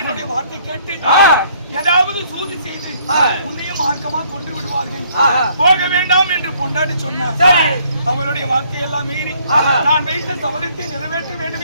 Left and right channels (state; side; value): inverted; both; correlation -0.63